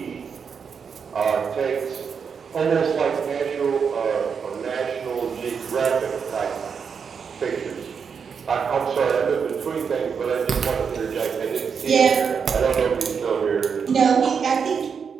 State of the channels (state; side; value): quieter; left; 6.4 dB